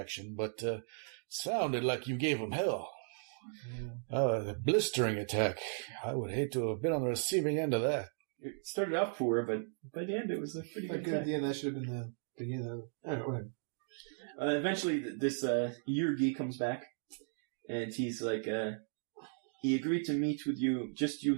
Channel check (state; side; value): silent; left; digital silence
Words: but sounded like you gave them hell. Yeah. The blistering attack. I would hate to have been on the receiving end of that. It started off poor, but by the end it was a pretty good attack. Yeah, that should have been the beginning of it. Whatever. Eventually, this Yurgi comes back, and he's like, he agreed to meet with you, just